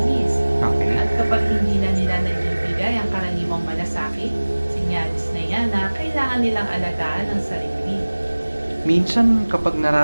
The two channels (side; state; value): both; inverted; correlation -1.00